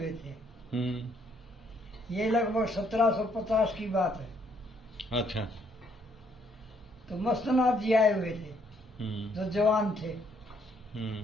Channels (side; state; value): both; normal; correlation 0.69